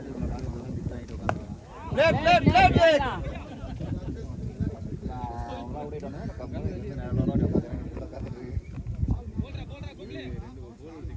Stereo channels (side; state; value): both; identical; correlation 1.00